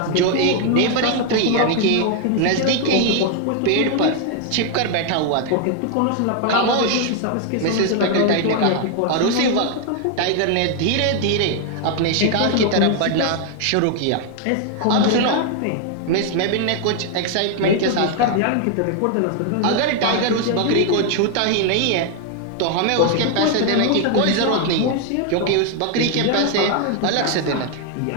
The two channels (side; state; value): both; different; correlation 0.00